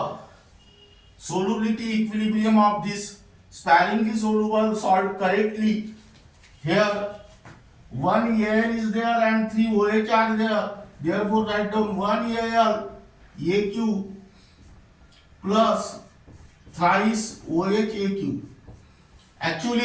solubility equilibrium of this sparingly soluble salt correctly. Here 1 Al is there and 3 OH are there. Therefore write down 1 Al AQ plus thrice OH AQ.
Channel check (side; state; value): both; identical; correlation 1.00